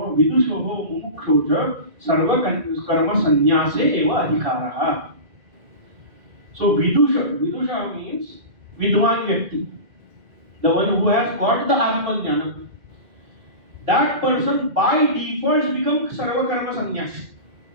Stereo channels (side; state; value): left; late; 2.1 ms